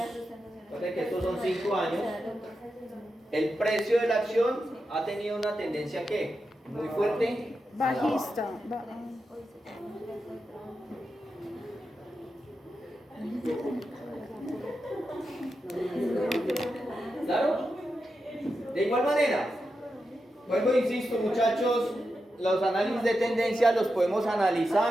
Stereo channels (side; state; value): both; normal; correlation 0.88